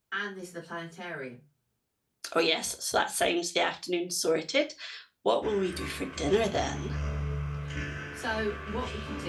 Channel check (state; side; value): identical; both; correlation 1.00